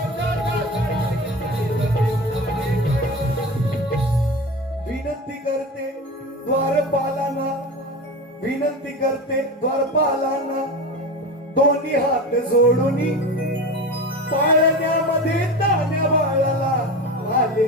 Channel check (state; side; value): normal; both; correlation 0.28